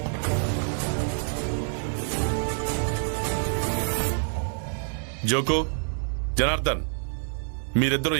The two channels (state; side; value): silent; left; 60 dB below the other